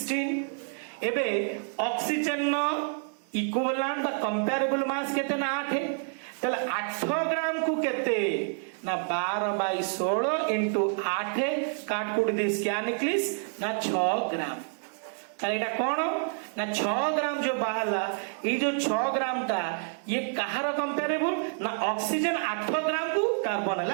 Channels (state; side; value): silent; left; 59 dB below the other